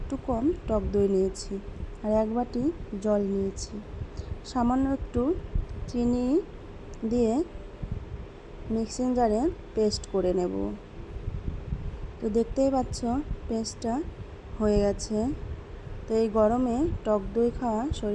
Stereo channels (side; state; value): both; identical; correlation 1.00